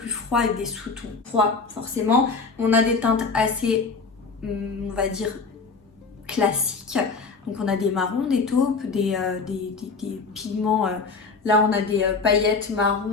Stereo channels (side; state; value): right; quieter; 4.5 dB